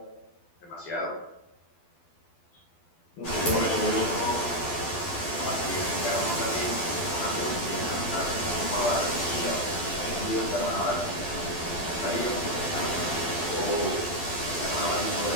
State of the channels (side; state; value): right; late; 12 ms